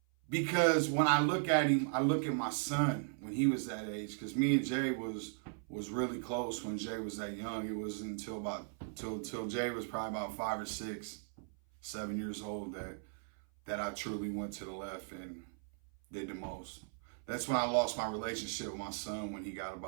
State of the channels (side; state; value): left; silent; 53 dB below the other